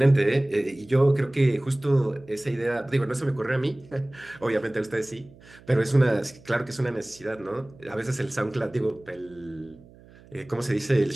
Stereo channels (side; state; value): right; noise; hum, 24 dB below the sound